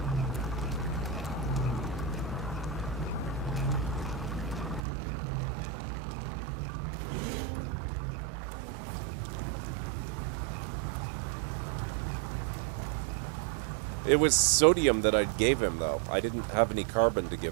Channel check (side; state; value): left; drops out; at 4.8 s